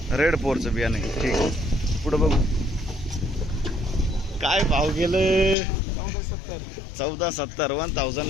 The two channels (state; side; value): drops out; right; at 5.6 s